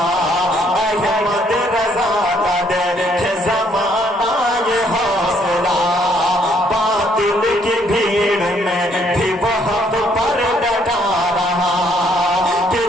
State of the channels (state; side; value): normal; both; correlation 0.67